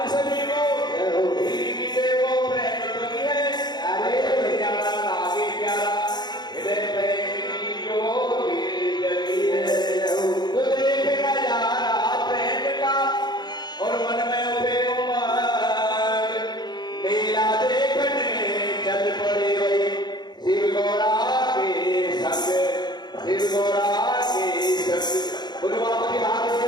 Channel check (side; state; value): right; late; 0.21 ms